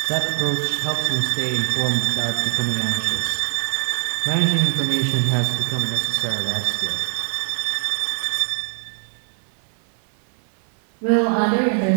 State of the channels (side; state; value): left; silent; 57 dB below the other